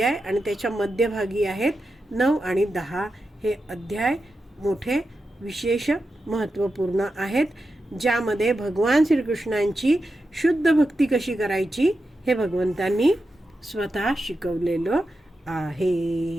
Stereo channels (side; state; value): both; normal; correlation 0.89